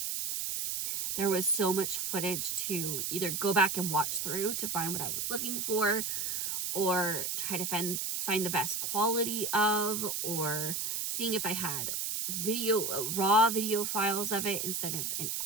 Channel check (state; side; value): noise; right; hiss, 1 dB below the sound